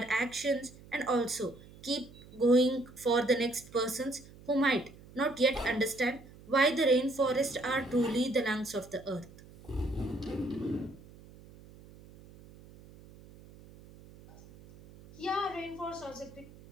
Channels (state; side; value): noise; right; hum, 21 dB below the sound